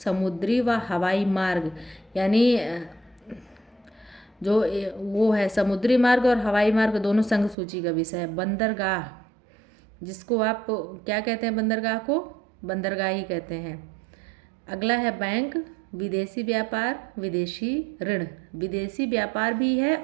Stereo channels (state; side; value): drops out; left; at 7.6 s